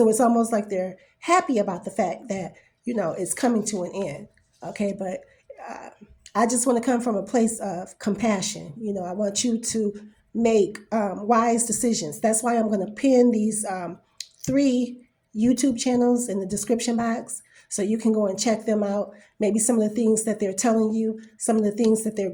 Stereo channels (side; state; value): both; identical; correlation 1.00